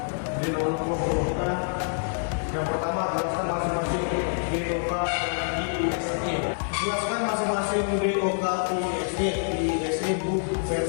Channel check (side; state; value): right; silent; digital silence